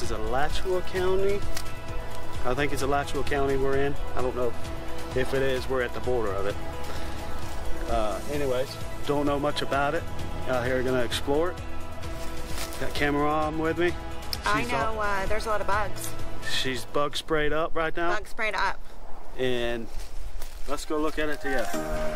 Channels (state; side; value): identical; both; correlation 1.00